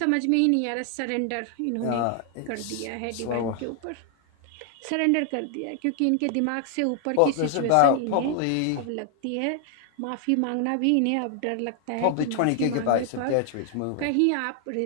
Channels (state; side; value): different; both; correlation 0.00